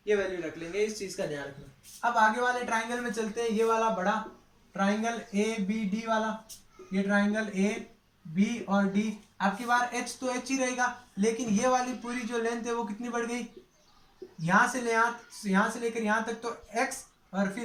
ये वैल्यू रख लेंगे, इस चीज का ध्यान रखना। अब आगे वाले ट्राइंगल में चलते हैं, ये वाला बड़ा ट्राइंगल ए बी डी वाला, ये ट्राइंगल ए बी और डी। आपकी बार एच तो एच ही रहेगा, लेकिन ये वाली पूरी जो लेंथ है वो कितनी बढ़ गई, यहाँ से लेकर यहाँ तक तो x और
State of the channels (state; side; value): identical; both; correlation 1.00